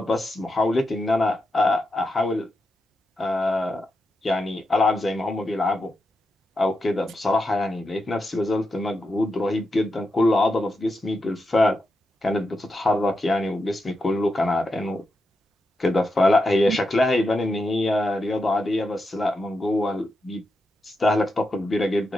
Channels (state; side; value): normal; both; correlation 0.87